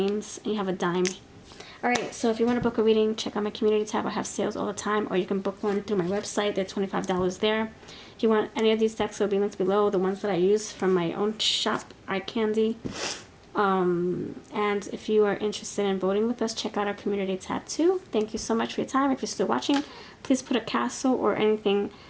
And you have a dime. Alright, so if you want to book a reading, check out my community tab. I have sales all the time. Or you can book one through my website. They're $25 there. If you want any of these decks, they'll be linked below. The ones that I use from my own shop, Eye Candy. And if you are interested in voting with us, check out our community tab too. Thank you so much for your time. If you're still watching, please put a castle or anything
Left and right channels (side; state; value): both; identical; correlation 1.00